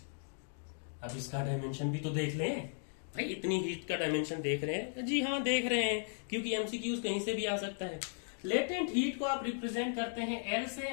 अब इसका डायमेंशन भी तो देख लें भाई। इतनी हीट का डायमेंशन देख रहे हैं? जी हाँ देख रहे हैं, क्योंकि एमसीक्यूज कहीं से भी आ सकता है। लेटेंट हीट को आप रिप्रेजेंट करते हैं L से,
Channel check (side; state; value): right; silent; digital silence